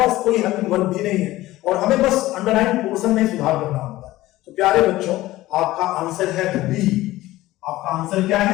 कोई हेल्पिंग वर्ब भी नहीं है और हमें बस अंडरलाइन पोर्शन में सुधार करना होता है। तो प्यारे बच्चों, आपका आंसर है बी। आपका आंसर क्या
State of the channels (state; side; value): quieter; right; 16.9 dB